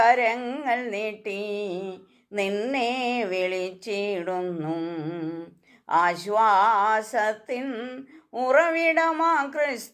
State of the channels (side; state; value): both; identical; correlation 1.00